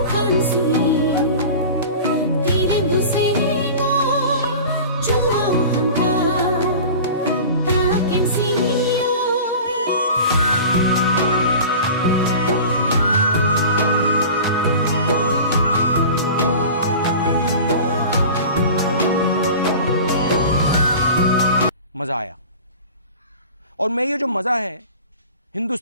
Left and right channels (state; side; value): inverted; both; correlation -0.37